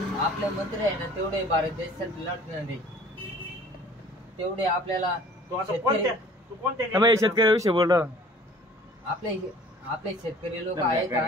आपले मंत्री आहे ना, तेवढे भारत देशात लढणारे, तेवढे आपल्याला तू आता शेतकरी कोणत्या शेतकऱ्याविषयी बोल. आपले आपले शेतकरी लोक आहे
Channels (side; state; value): both; normal; correlation 0.50